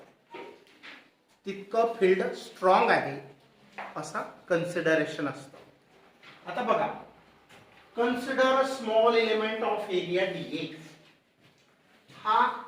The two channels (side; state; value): both; identical; correlation 1.00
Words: तितकं फील्ड स्ट्रॉंग आहे असा कन्सिडरेशन असतं. आता बघा, consider small element of area DA. हा